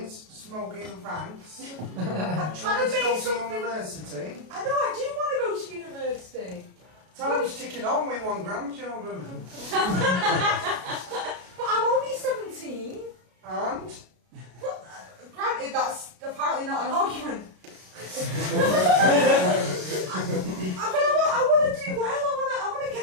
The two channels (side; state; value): left; late; 33 ms